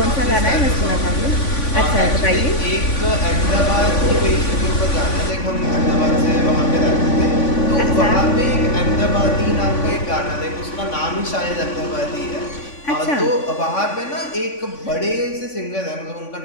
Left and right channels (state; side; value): late; right; 3.5 ms